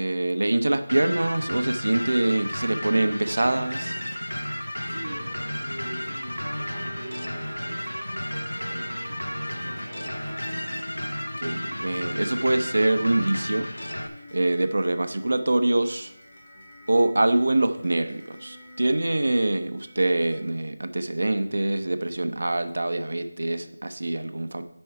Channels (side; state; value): both; inverted; correlation -0.99